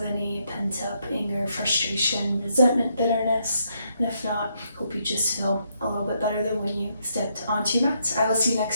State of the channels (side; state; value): both; inverted; correlation -0.76